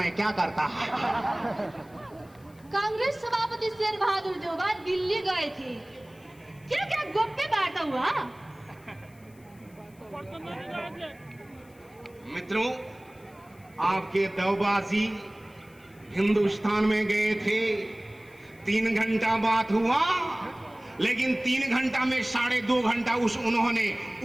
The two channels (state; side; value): noise; left; hiss, 29 dB below the sound